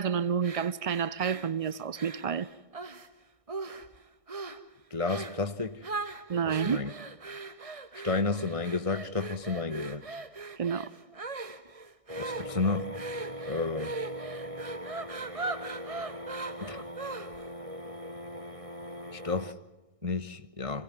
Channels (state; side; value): late; left; 1.6 ms